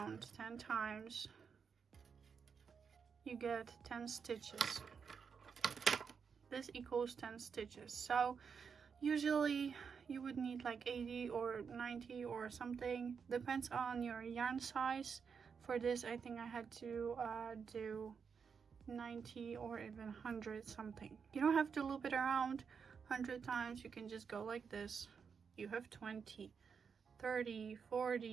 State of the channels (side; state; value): left; quieter; 6.2 dB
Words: 10 times, you get 10 stitches. This equals 10 stitches. So usually you would need like 80 or 90 or something. Depends on your yarn size. For this, I think I had to do 90 or even 100 something. You don't have to loop it around 100 times. You can just go like this. You have 20, 30,